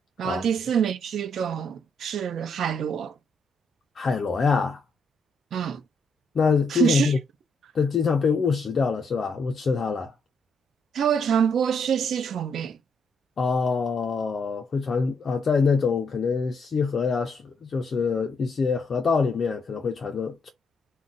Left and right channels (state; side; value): normal; both; correlation 0.74